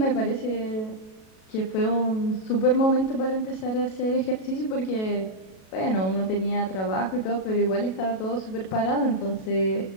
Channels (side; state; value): right; late; 37 ms